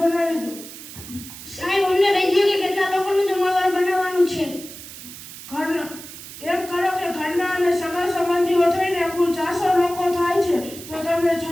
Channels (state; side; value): noise; right; hiss, 14 dB below the sound